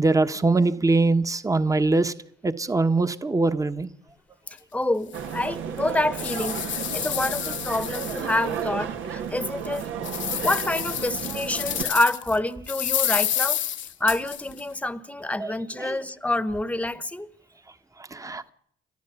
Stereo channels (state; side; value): normal; both; correlation 0.69